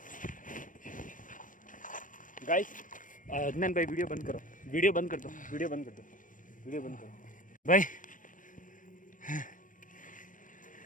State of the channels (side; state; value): right; late; 0.38 ms